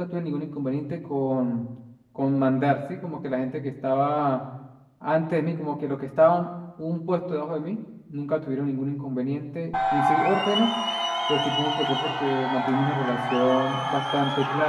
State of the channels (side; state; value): both; identical; correlation 1.00